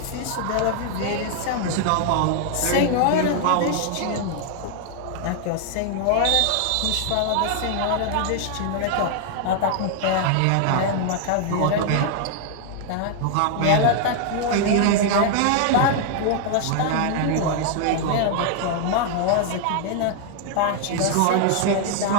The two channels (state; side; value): different; both; correlation 0.00